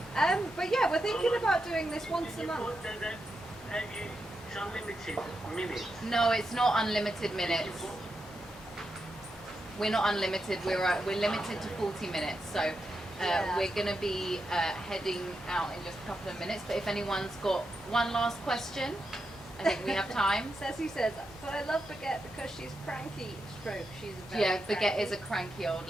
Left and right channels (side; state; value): both; normal; correlation 0.86